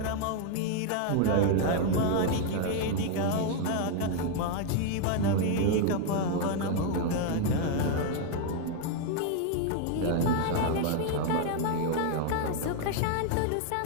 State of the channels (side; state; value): both; different; correlation 0.00